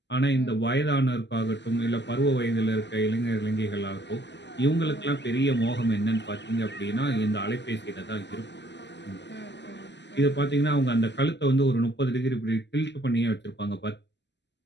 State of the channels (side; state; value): right; late; 0.51 ms